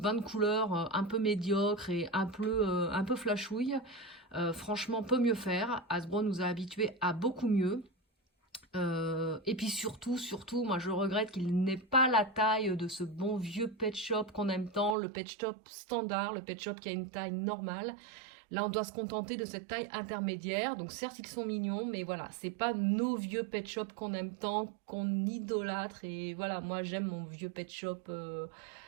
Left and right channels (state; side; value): drops out; left; at 15.0 s